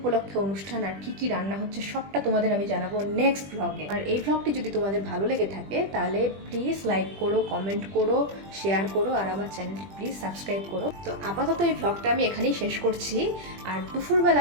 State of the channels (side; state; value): left; late; 20 ms